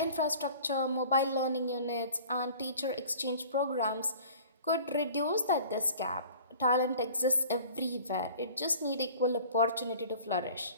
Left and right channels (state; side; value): inverted; both; correlation -0.46